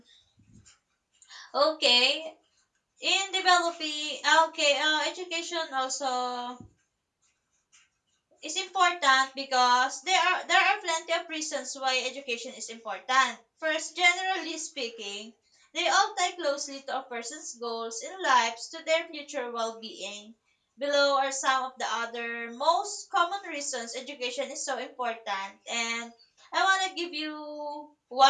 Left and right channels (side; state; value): both; identical; correlation 1.00